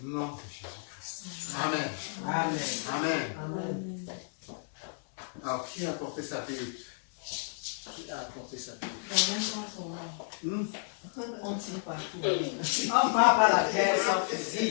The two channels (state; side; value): silent; right; digital silence